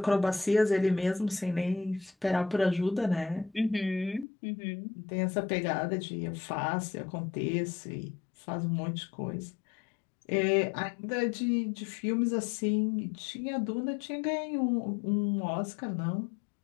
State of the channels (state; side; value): drops out; right; at 4.2 s